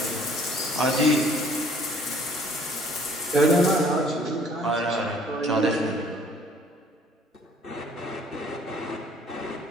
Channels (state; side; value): normal; both; correlation 0.57